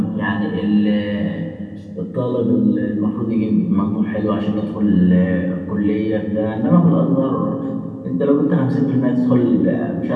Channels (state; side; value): identical; both; correlation 1.00